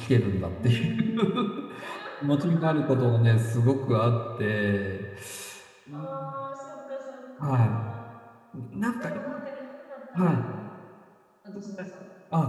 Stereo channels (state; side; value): identical; both; correlation 1.00